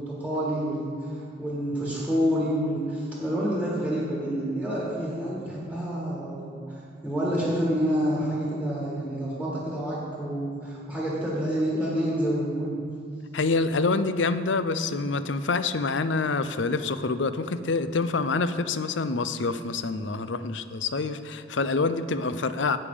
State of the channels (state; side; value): normal; both; correlation 0.42